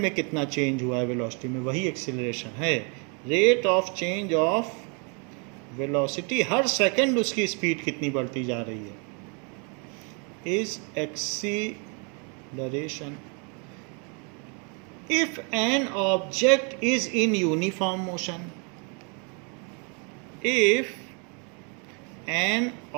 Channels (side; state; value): left; quieter; 35.6 dB